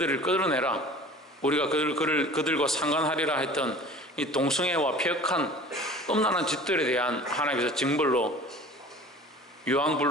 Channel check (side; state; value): both; normal; correlation 0.43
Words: 끌어내라, 우리가 그들과 상관하리라 했던 이 동성애와 폐역한 음란한 짓들에 대한 하나님께서 징벌로